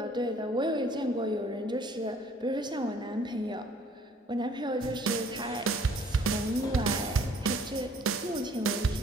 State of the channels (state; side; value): normal; both; correlation 0.57